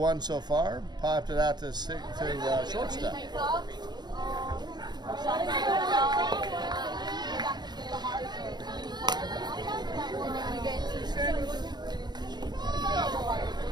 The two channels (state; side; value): late; left; 0.21 ms